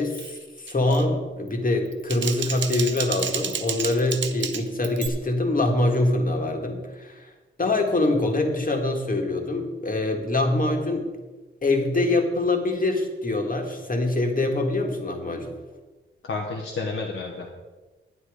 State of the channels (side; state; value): both; normal; correlation 0.57